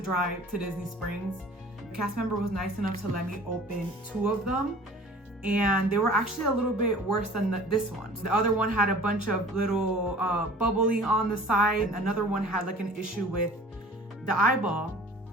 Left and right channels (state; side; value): normal; both; correlation 0.46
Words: drive to Disney Springs. The cast member was nice enough to let me open 2 of them. And they were actually a little bit worse than this one. The other one had a bunch of little bubbling on the side. Another one had like an issue with the eyeball.